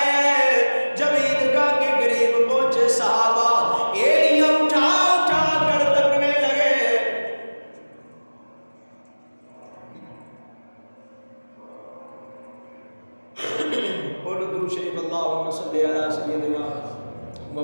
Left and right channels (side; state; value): both; inverted; correlation -1.00